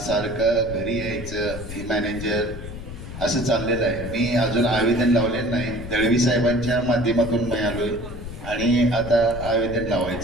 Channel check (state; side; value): noise; left; rumble, 10 dB below the sound